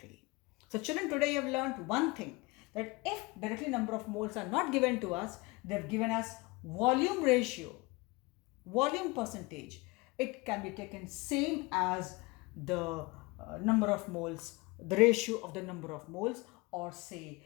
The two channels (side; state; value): right; quieter; 24.2 dB